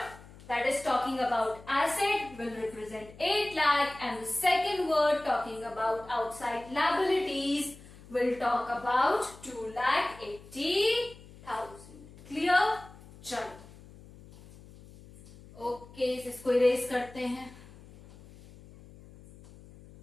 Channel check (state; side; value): noise; left; hum, 20 dB below the sound